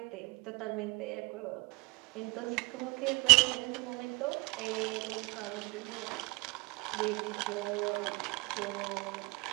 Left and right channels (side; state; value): left; quieter; 26.9 dB